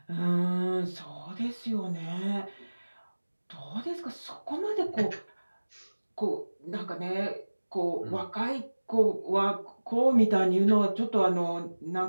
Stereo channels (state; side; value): inverted; both; correlation -1.00